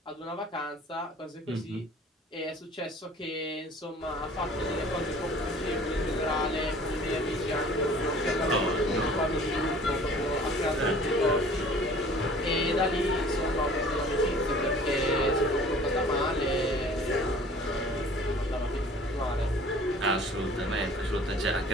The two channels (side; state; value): both; normal; correlation 0.49